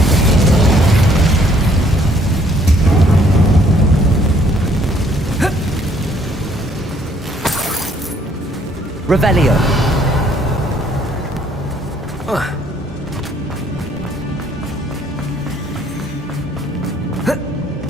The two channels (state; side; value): normal; both; correlation 0.64